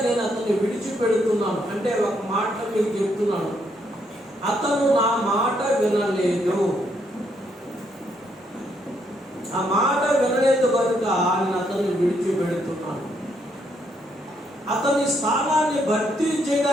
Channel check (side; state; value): both; normal; correlation 0.74